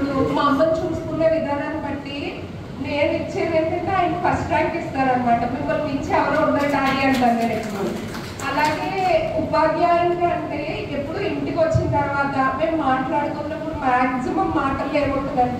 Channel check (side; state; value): both; identical; correlation 1.00